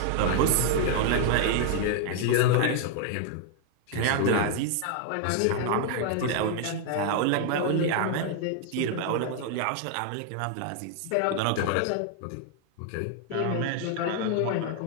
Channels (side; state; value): both; different; correlation 0.00